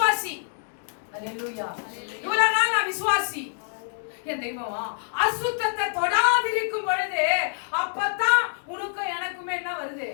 அல்லேலூயா, இவ்வளவு நாள் நான் விசுவாசி. என் தெய்வமா அசுத்தத்தை தொடாதிருக்கும் பொழுது அப்பதான் உனக்கும் எனக்குமே என்ன வருது?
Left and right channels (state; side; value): silent; right; digital silence